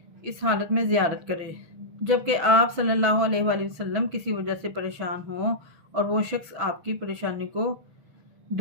اس حالت میں زیارت کرے جبکہ آپ صلی اللہ علیہ وآلہ وسلم کسی وجہ سے پریشان ہوں اور وہ شخص آپ کی پریشانی کو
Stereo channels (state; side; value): late; left; 6.1 ms